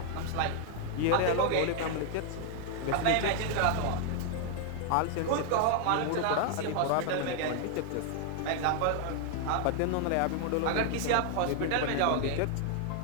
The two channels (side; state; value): both; different; correlation 0.00